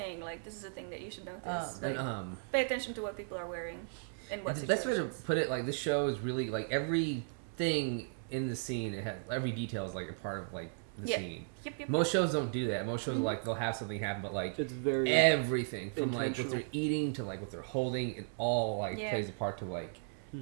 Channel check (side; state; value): left; silent; 54 dB below the other